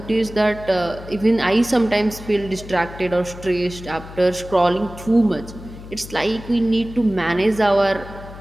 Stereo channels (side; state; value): left; noise; hum, 15 dB below the sound